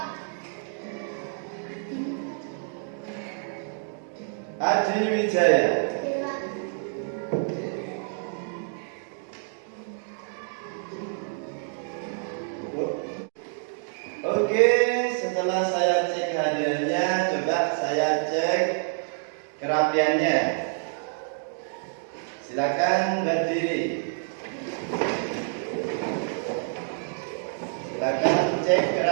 Adi Wijaya. Hadir Pak. Oke, setelah saya cek kehadirannya, coba saya cek kerapiannya. Silakan berdiri. Silakan cek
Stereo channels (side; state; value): left; silent; 60 dB below the other